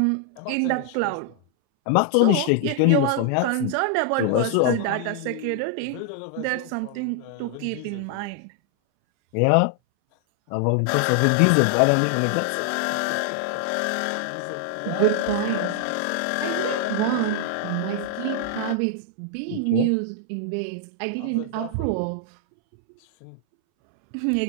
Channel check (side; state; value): both; different; correlation 0.00